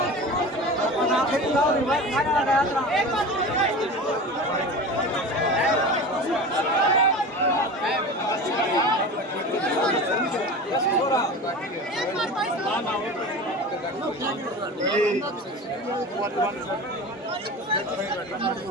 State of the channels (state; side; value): normal; both; correlation 0.32